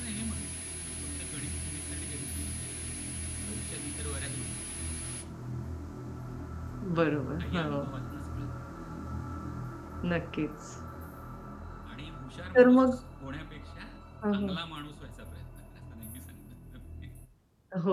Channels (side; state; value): both; identical; correlation 1.00